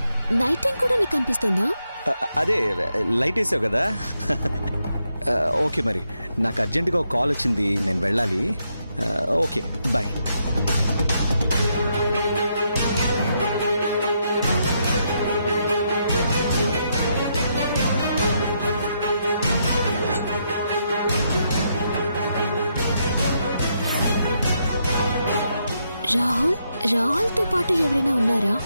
Night time కూడా నీకు అనిపిస్తుందా? అదే లైట్ వేసావు కదా. ఓకే, మరి నాకు అర్జెంటుగా ఒక కాల్ వచ్చింది, నేను వెళ్ళాలి. Okay, bye. రాహుల్ తో పాటు ఎవరైనా ఉన్నారా?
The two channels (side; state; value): both; inverted; correlation -0.79